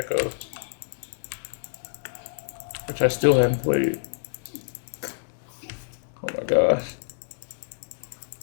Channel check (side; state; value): right; silent; 60 dB below the other